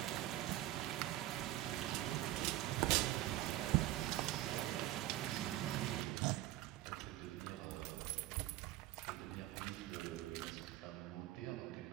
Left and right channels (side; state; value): left; quieter; 15.4 dB